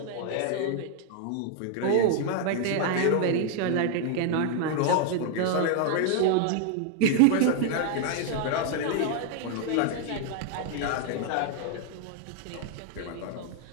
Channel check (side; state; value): both; different; correlation 0.00